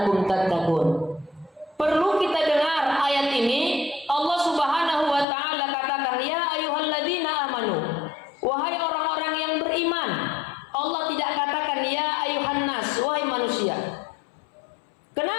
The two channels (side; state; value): right; drops out; at 5.2 s